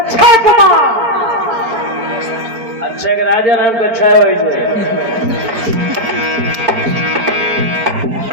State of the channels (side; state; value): left; late; 4.4 ms